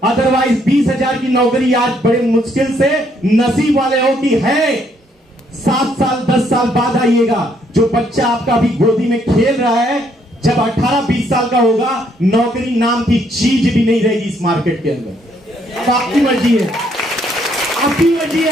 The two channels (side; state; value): both; normal; correlation 0.70